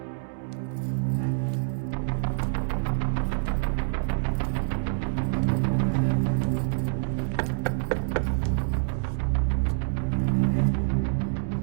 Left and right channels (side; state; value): left; silent; digital silence